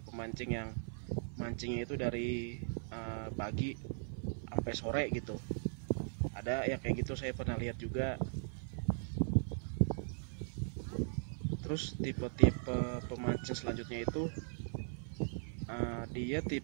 yang mancingnya itu dari pagi sampai sore gitu. Ada yang kayak gitu, saya pernah lihat juga. Terus tipe-tipe pemancing selanjutnya itu dia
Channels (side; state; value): left; silent; 52 dB below the other